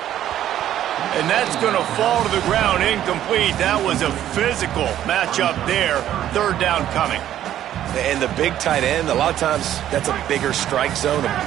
And that's going to fall to the ground incomplete. That was a physical matchup there. 3rd down coming. And the big tight end, a lot of times that's a bigger strike zone, a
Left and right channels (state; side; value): quieter; left; 11.7 dB